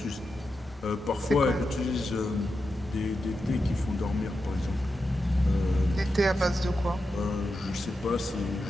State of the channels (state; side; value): normal; both; correlation 0.89